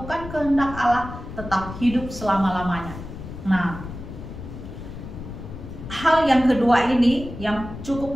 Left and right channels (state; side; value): noise; left; rumble, 11 dB below the sound